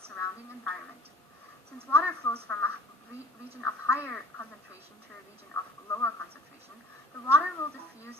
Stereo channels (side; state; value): both; normal; correlation 0.49